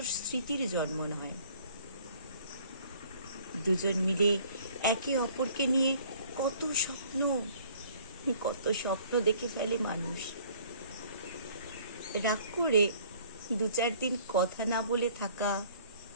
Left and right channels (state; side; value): inverted; both; correlation -0.55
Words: স্মৃতির জন্ম নেয়। দুজন মিলে একে অপরকে নিয়ে কত স্বপ্ন দেখে ফেলে মানুষ। রাগ করে 2-4 দিন কথা না বলে থাকা,